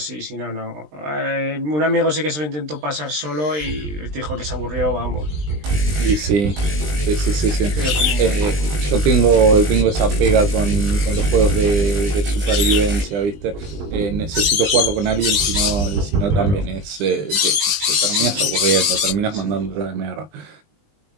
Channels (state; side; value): late; left; 20 ms